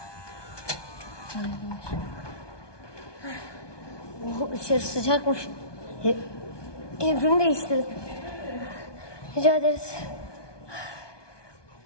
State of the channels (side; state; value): right; late; 1.2 ms